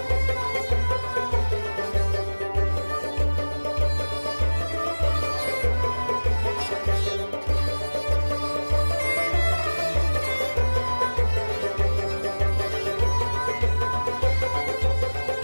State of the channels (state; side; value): inverted; both; correlation -1.00